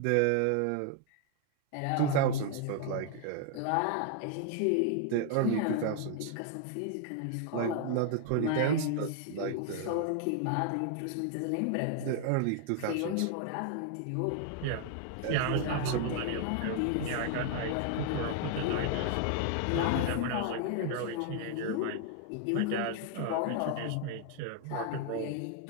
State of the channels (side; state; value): both; different; correlation 0.00